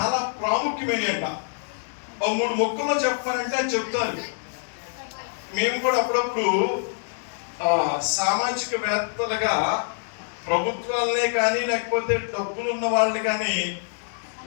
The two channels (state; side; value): silent; right; digital silence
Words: ప్రాముఖ్యమైనట. మూడు మొక్కల్లో చెప్పాలంటే చెప్తారు. మేము కూడా అప్పుడప్పుడు సామాజికవేత్తలుగా ప్రభుత్వాలనే కానీ లేకపోతే డబ్బులు ఉన్న వాళ్ళని కానీ